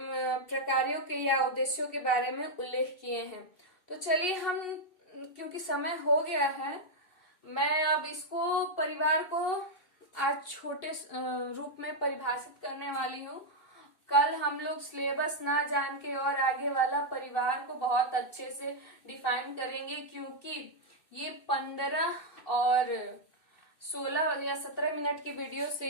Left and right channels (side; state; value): right; late; 2.6 ms